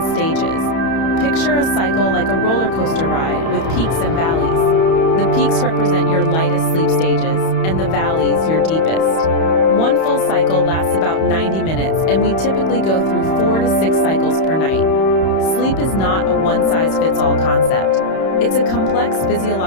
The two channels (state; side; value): late; right; 31 ms